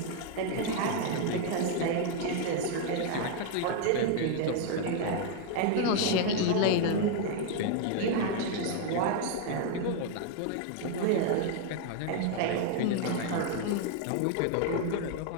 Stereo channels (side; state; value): both; different; correlation 0.00